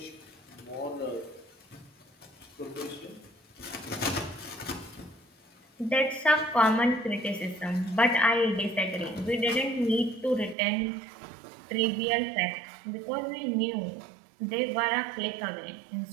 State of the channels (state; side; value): drops out; left; at 10.6 s